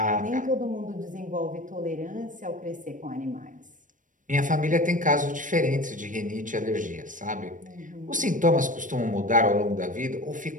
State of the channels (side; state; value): left; late; 0.38 ms